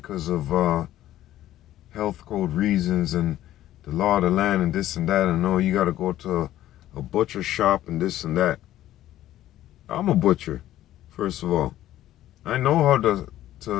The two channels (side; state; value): right; quieter; 13.5 dB